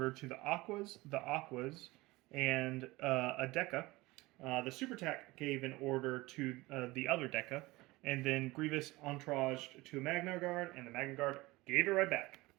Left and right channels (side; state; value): left; quieter; 20.7 dB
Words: to the Aquas, and a Deca. The Super Tac gave an order to the other Deca, and then Grievous entouraged to a Magna Guard, and the Magna Guard gave it right back.